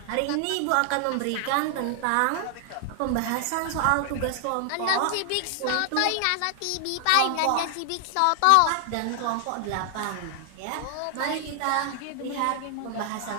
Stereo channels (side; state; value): both; different; correlation 0.00